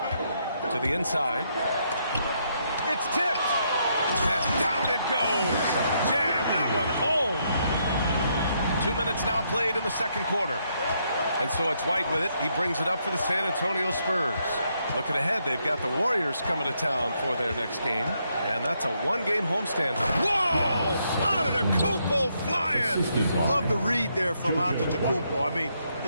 To the inside. It's tipped. And down it goes. Jam that one home. 2 minutes now played in the second quarter. And so it's White with it. He brings it up for the San Antonio Spurs. Looking ahead, they've got the Warriors coming to town for their next game. And that's a one-game homestand. Whoa! Antetokounmpo flying! Love the read there from Antetokounmpo. I mean,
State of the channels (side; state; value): both; inverted; correlation -0.76